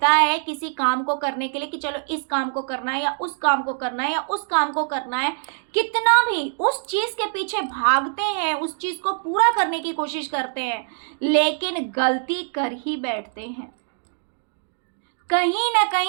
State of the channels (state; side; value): silent; left; digital silence